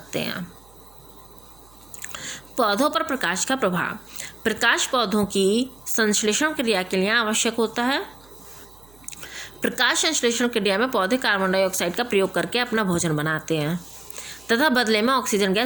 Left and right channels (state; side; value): noise; right; hum, 27 dB below the sound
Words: हैं। पौधों पर प्रकाश का प्रभाव। प्रकाश पौधों की संश्लेषण क्रिया के लिए आवश्यक होता है। प्रकाश संश्लेषण क्रिया में पौधे कार्बन डाइऑक्साइड का प्रयोग करके अपना भोजन बनाते हैं तथा बदले में ऑक्सीजन